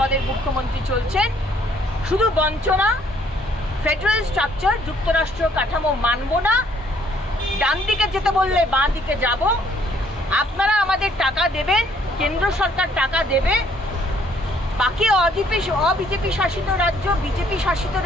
মুখ্যমন্ত্রী চলছেন। শুধু বঞ্চনা, ফেডারেল স্ট্রাকচার, যুক্তরাষ্ট্র কাঠামো মানব না, ডান দিকে যেতে বললে বাঁ দিকে যাব, আপনারা আমাদের টাকা দেবেন, কেন্দ্র সরকার টাকা দেবে, বাকি অবিজেপি শাসিত রাজ্য, বিজেপি শাসিত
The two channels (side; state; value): both; normal; correlation 0.64